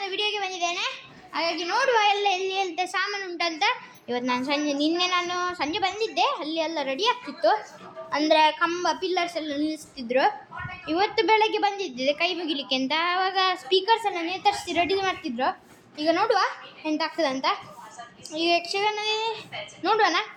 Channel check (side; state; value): both; identical; correlation 1.00